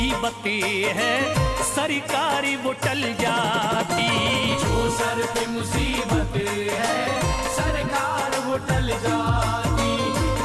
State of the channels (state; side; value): identical; both; correlation 1.00